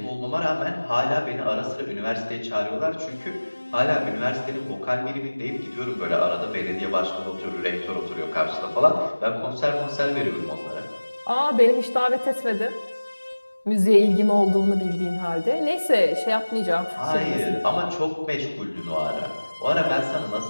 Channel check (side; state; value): both; inverted; correlation -1.00